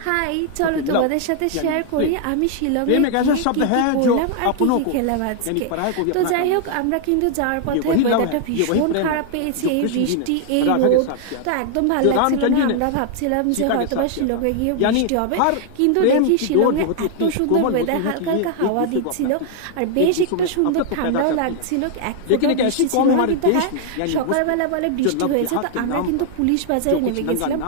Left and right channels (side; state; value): both; different; correlation 0.00